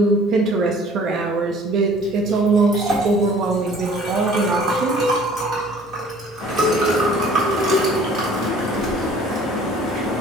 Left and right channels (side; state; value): both; normal; correlation 0.52